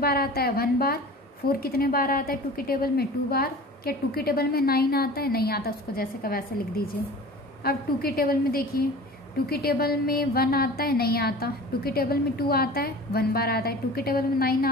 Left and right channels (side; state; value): both; normal; correlation 0.40